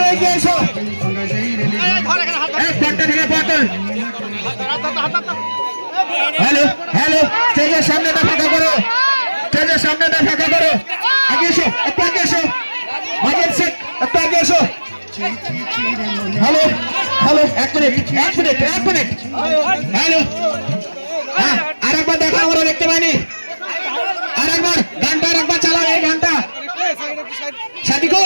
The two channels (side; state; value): both; inverted; correlation -1.00